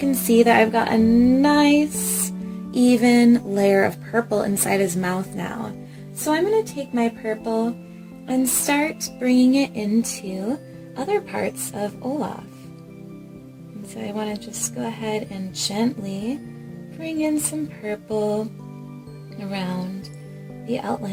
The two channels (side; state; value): both; identical; correlation 1.00